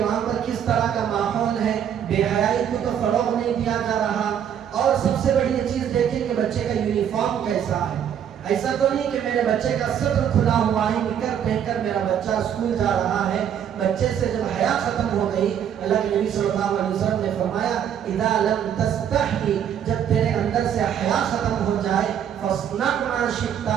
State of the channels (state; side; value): quieter; left; 9.1 dB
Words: پر کس طرح کا ماحول ہے، بے حیائی کو تو فروغ نہیں دیا جا رہا. اور سب سے بڑی یہ چیز دیکھیں کہ بچے کا یونیفارم کیسا ہے. ایسا تو نہیں کہ میرے بچے کا سطر کھلا ہوا ہے، نکر پہن کر میرا بچہ اسکول جا رہا ہے. بچے سے جب حیا ختم ہو گئی، اللہ کے نبی صلی اللہ علیہ وسلم نے فرمایا اذا لم تستحی، جب تیرے اندر سے حیا ختم ہو جائے، فاصنع ما شئت،